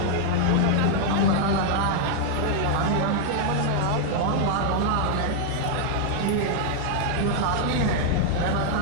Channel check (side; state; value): both; different; correlation -0.01